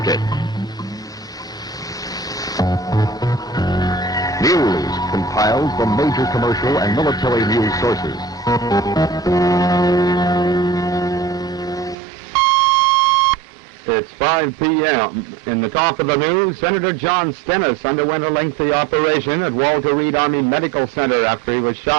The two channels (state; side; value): drops out; left; at 12.0 s